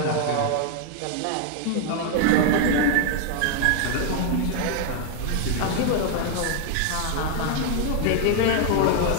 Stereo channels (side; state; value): both; different; correlation 0.00